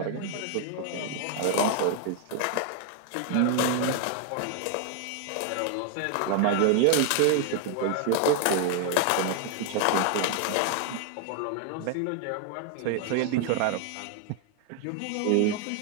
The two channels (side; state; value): both; different; correlation 0.00